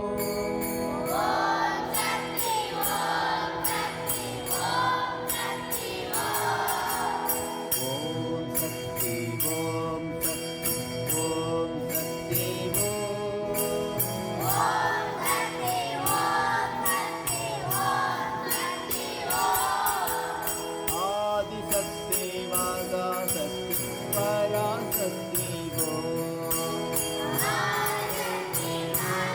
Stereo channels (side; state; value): both; identical; correlation 1.00